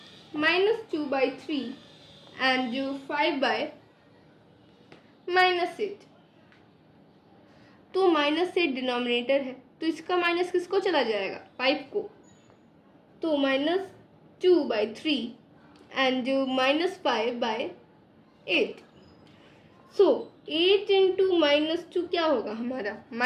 -2/3 and 5/-8। तो -8 डिनोमिनेटर है, तो इसका माइनस किसको चला जाएगा, 5 को। तो -2/3 एंड -5/8। सो 8 इंटू -2 क्या होगा हमारा,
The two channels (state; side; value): identical; both; correlation 1.00